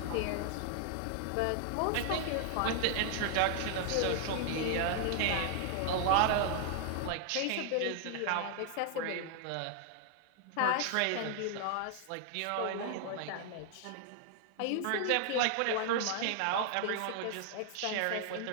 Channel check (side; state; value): both; different; correlation 0.00